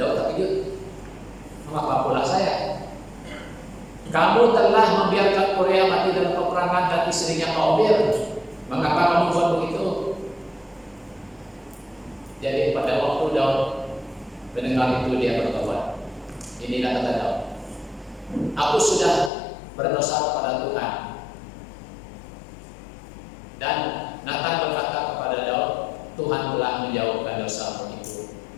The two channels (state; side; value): drops out; right; at 19.3 s